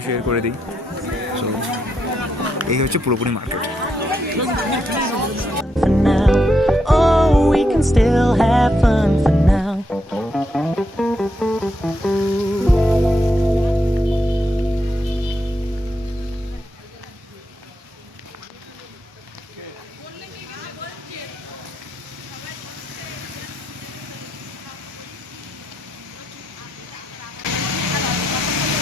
শেয়ার করে দিই। সো এই হচ্ছে পুরোপুরি market. For now, oh, we can still have fun for now.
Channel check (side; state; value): both; normal; correlation 0.81